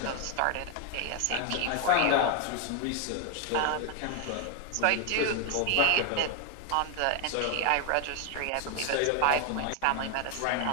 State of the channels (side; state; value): both; different; correlation 0.01